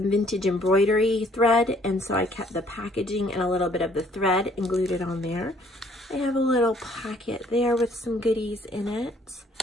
vintage embroidery thread, and so I kept the packaging and a little bit of the thread and glued it on there. I have a little pocket there with some goodies in it.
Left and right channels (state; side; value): normal; both; correlation 0.61